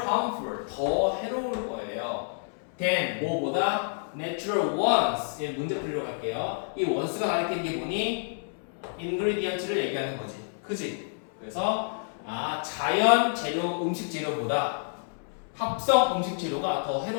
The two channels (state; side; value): silent; right; 59 dB below the other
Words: harmful, 더 해로울 거예요. than 뭐보다 natural ones. 예, 문제 풀이로 갈게요. 이 once가 가리키는 게 뭐니? ingredients를 얘기하는 거지. 그지? 그래서 자연 재료, 음식 재료보다 합성 음식 재료가 더